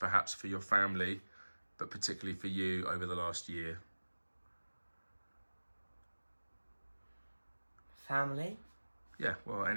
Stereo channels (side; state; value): both; inverted; correlation -1.00